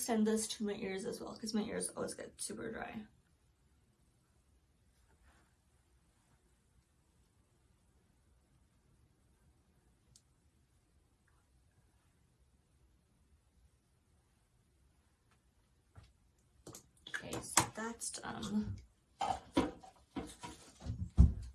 this to my ears as well, because my ears always get super dry. Okay, so that's done.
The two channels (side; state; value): both; identical; correlation 1.00